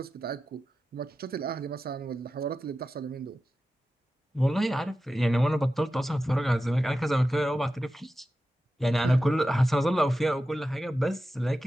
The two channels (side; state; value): both; normal; correlation 0.93